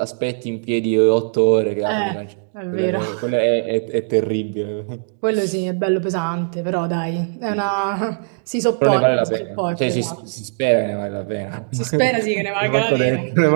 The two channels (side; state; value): left; silent; digital silence